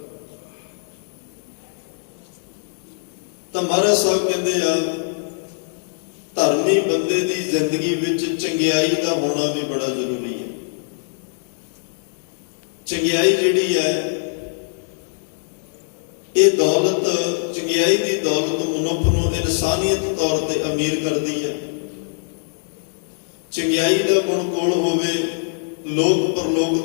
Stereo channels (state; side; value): silent; right; digital silence